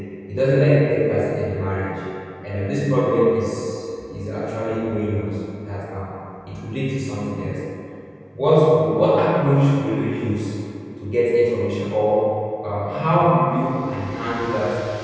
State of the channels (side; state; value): both; identical; correlation 1.00